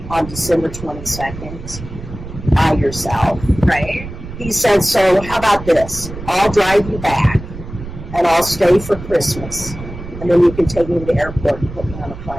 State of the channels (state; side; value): noise; right; rumble, 12 dB below the sound